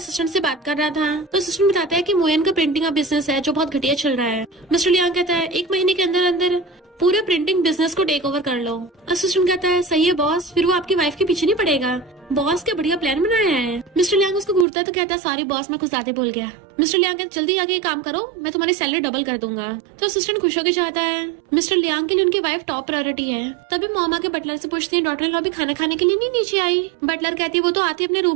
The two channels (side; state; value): left; drops out; at 14.7 s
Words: से बात कर रहा था तो असिस्टेंट बताता है कि मोयन का प्रिंटिंग का बिजनेस है जो बहुत घटिया चल रहा है। मिस्टर लियांग कहता है 1 महीने के अंदर अंदर पूरे प्रिंटिंग बिजनेस को टेक ओवर कर लो। असिस्टेंट कहता है सही है बॉस, फिर वो आपकी वाइफ के पीछे नहीं पड़ेगा। बॉस क्या बढ़िया प्लान बनाया है। मिस्टर लियांग उसको घूरता है तो कहता है सॉरी बॉस मैं कुछ ज्यादा बोल गया। मिस्टर लियांग कहता जल्दी आगे ये काम करो, मैं तुम्हारी सैलरी डबल कर दूंगा। तो असिस्टेंट खुश होकर जाता है। मिस्टर लियांग के लिए उनकी वाइफ टॉप प्रायोरिटी है। तभी मोमा के बटलर से पूछती है डॉटर इन लॉ भी खाना खाने के लिए नहीं नीचे आई? बटलर कहती है वो तो आती अपने